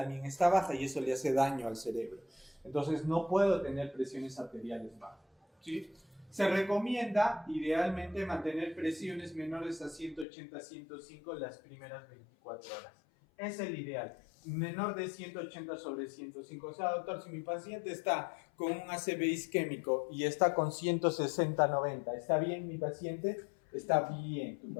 está baja, y eso le hace daño al cerebro. Entonces, no puedo tener presiones arteriales bajas, ¿sí? Se recomienda, idealmente, mantener presiones menores a 180-105 las primeras 24 horas. Es el ideal. Menor de 180 sobre 105. O sea, doctor, si mi paciente está con un ACV isquémico y está con 160-90, ¿está bien mi paciente? Está bien tu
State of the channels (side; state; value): right; drops out; at 10.2 s